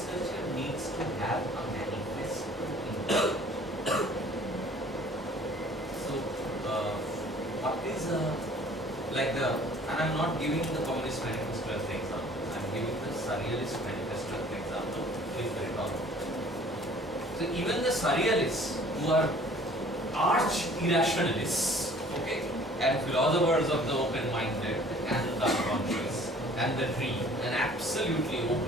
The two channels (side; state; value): both; normal; correlation 0.52